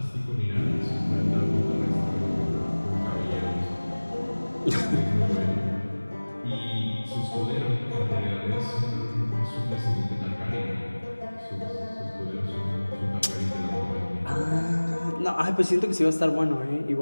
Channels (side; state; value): both; inverted; correlation -1.00